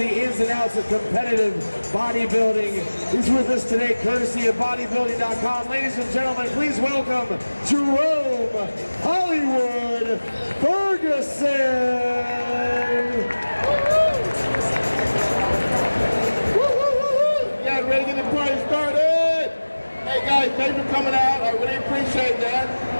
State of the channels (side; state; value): both; inverted; correlation -1.00